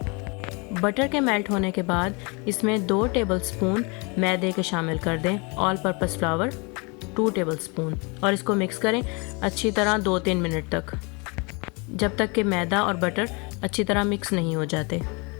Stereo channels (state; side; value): quieter; right; 30.6 dB